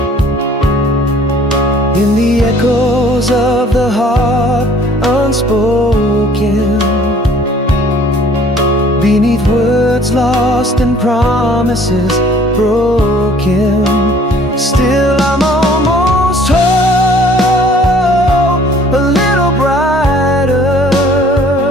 In the echoes of the heart unspoken, beneath words lost and promises broken. Still I'm almost home, a little brighter,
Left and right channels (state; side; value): normal; both; correlation 0.55